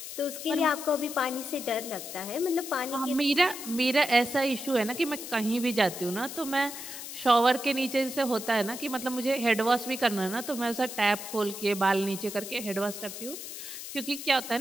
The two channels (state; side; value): noise; left; hiss, 9 dB below the sound